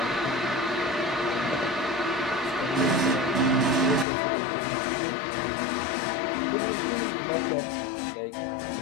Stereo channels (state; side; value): drops out; right; at 4.0 s